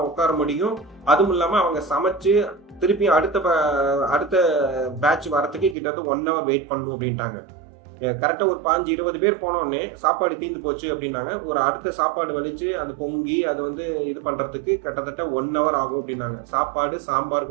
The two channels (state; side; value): drops out; left; at 5.8 s